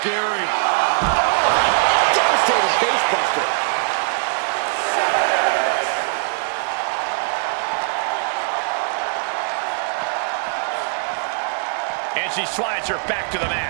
Devastating facebuster. And she slides her back to the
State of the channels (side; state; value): left; silent; digital silence